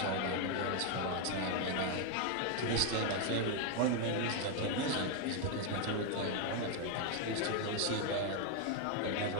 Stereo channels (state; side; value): different; both; correlation 0.01